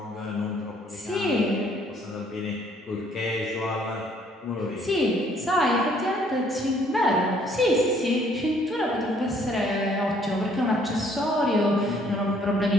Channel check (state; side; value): normal; both; correlation 0.63